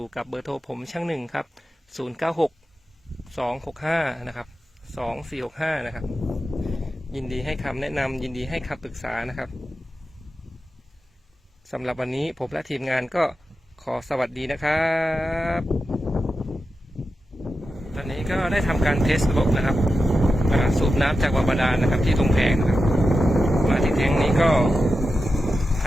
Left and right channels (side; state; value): both; normal; correlation 0.91